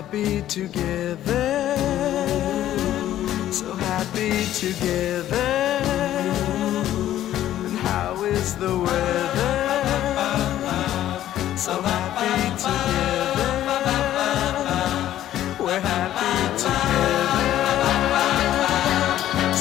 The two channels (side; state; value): right; quieter; 12.6 dB